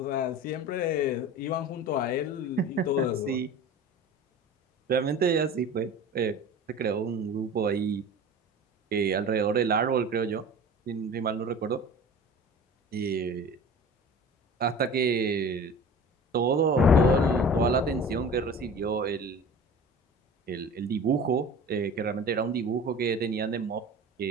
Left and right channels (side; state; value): both; normal; correlation 0.38